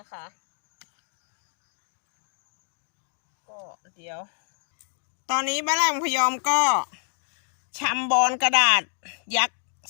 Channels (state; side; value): silent; right; digital silence